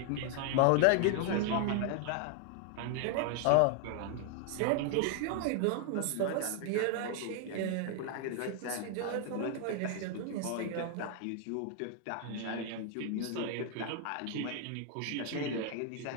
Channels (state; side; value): different; both; correlation 0.00